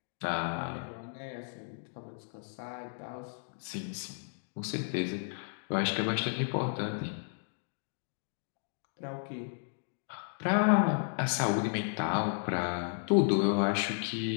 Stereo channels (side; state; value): right; silent; digital silence